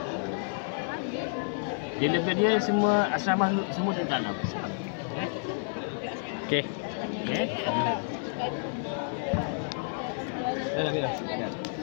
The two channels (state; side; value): silent; right; 58 dB below the other